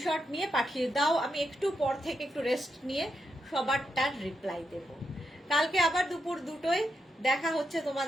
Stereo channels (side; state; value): both; normal; correlation 0.83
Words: নিয়ে পাঠিয়ে দাও, আমি একটু পর থেকে একটু রেস্ট নিয়ে সবারটার রিপ্লাই দেব। কালকে আবার দুপুর 2টোয় দেখা হচ্ছে